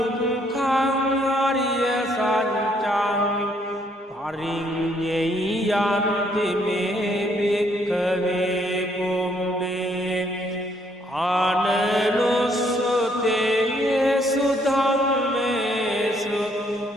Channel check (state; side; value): normal; both; correlation 0.69